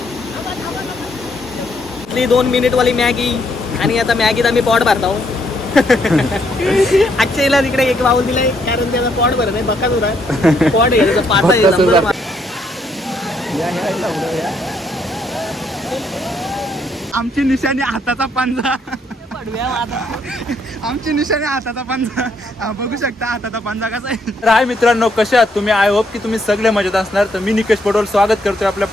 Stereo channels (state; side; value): normal; both; correlation 0.72